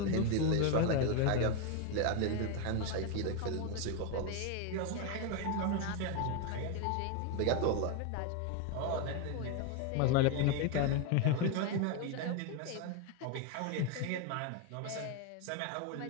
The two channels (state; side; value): different; both; correlation 0.01